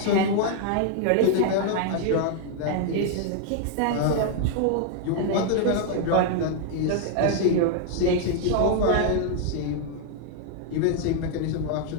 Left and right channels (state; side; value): different; both; correlation 0.00